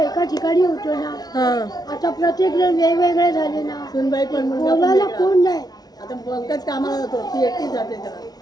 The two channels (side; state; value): right; late; 0.19 ms